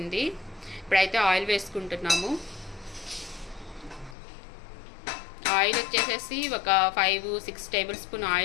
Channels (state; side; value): drops out; right; at 4.2 s